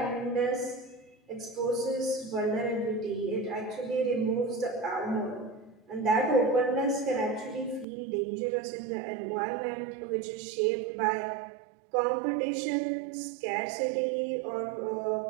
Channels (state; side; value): drops out; left; at 7.9 s